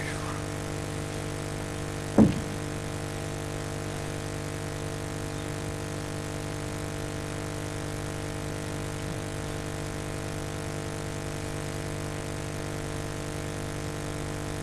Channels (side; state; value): both; identical; correlation 1.00